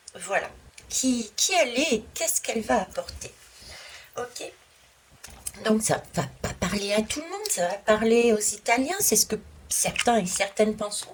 Voilà. Qui elle est et qu'est-ce qu'elle va apporter? Ok. Donc ça va pas parler à tout le monde, ça va parler aux Italiens, c'est ce que certains et certaines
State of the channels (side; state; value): both; identical; correlation 1.00